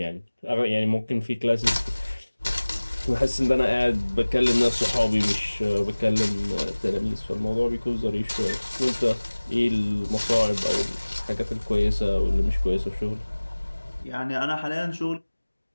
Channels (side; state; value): both; inverted; correlation -1.00